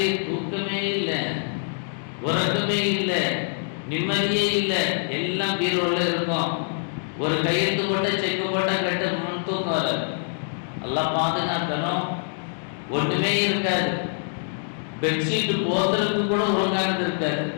தூக்கமே இல்லை, உறக்கமே இல்லை, நிம்மதியே இல்லை, எல்லாம் பீரோல இருக்கும். ஒரு கையெழுத்து போட்ட செக்கு போட்ட கட்ட முன் தூக்கம் வராது. எல்லாம் பாதுகாக்கணும். ஒன்றுமே இருக்காது. பெட்ஷீட் போத்துறதுக்கு கூட ஒழுங்கானது இருக்காது.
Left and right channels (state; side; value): silent; right; digital silence